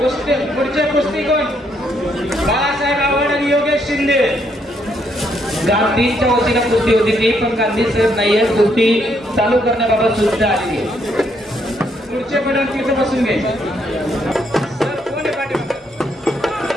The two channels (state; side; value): normal; both; correlation 0.73